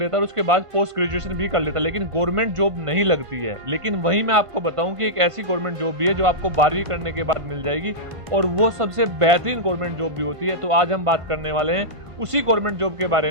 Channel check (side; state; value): left; late; 1.5 ms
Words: है और उसके बाद पोस्ट ग्रेजुएशन भी कर लेता है, लेकिन गवर्नमेंट जॉब नहीं लगती है। लेकिन वहीं मैं आपको बताऊं कि एक ऐसी गवर्नमेंट जॉब भी है जो आपको 12वीं करने के बाद मिल जाएगी और वो सबसे बेहतरीन गवर्नमेंट जॉब भी होती है। तो आज हम बात करने वाले हैं उसी गवर्नमेंट जॉब के बारे